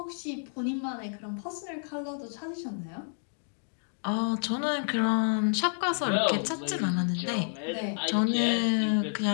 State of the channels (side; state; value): right; silent; 58 dB below the other